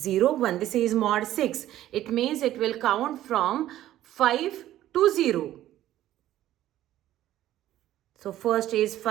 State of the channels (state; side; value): quieter; left; 13.4 dB